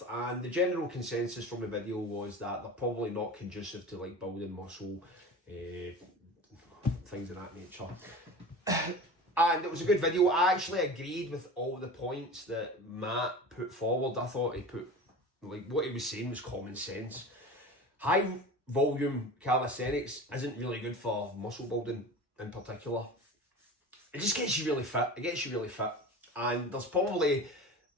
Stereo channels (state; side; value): normal; both; correlation 0.34